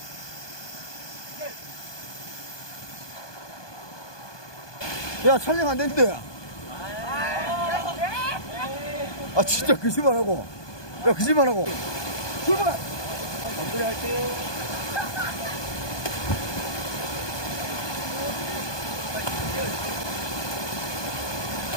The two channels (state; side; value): late; right; 1.2 ms